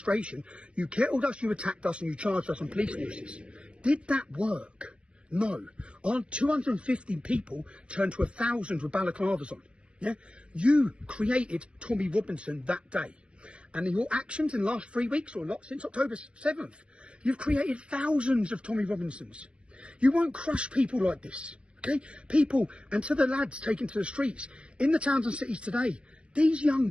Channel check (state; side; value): late; left; 0.058 ms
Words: you kettled us, you attacked us, and you charged us on police forces. Did that work? No. Our 250 people turned to 1,000 with balaclavas on. Yeah? You created Tommy Robinson that day. And in your actions in the last 3 weeks, or not, since October 7th, you've created thousands of Tommy Robinsons. You won't crush people like this. Okay? People, and to the lads taken to the streets, in the towns and cities today, these young